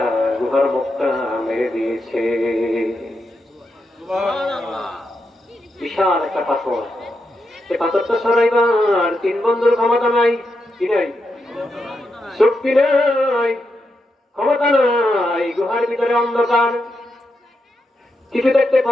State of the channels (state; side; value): normal; both; correlation 0.85